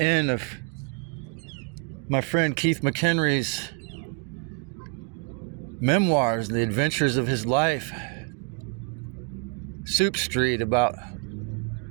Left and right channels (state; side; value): quieter; left; 34.2 dB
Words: of my friend Keith McHenry's memoirs, The Adventures of His Life, Soup Street, about